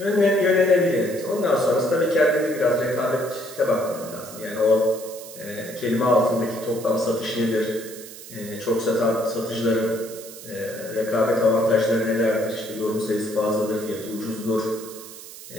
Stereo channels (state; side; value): noise; right; hiss, 15 dB below the sound